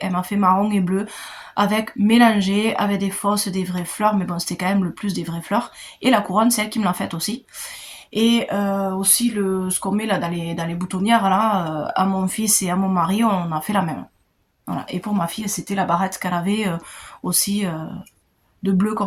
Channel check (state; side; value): identical; both; correlation 1.00